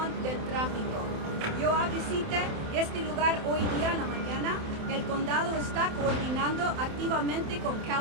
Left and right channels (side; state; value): left; late; 27 ms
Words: del tráfico. Yo visité este lugar hoy día en la mañana. El condado está coordinando activamente con